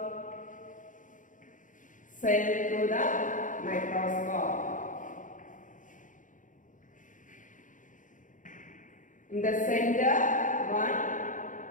cell through the microscope, in the center one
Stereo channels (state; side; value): late; right; 0.38 ms